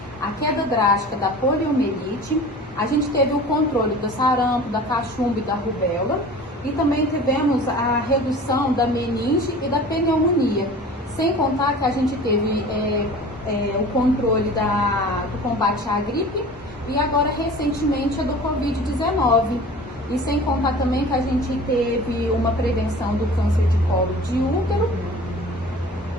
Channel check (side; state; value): both; normal; correlation 0.41